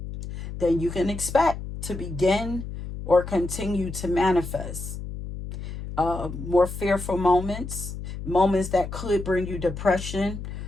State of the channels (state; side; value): noise; left; hum, 8 dB below the sound